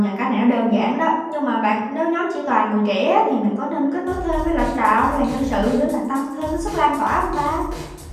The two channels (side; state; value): both; identical; correlation 1.00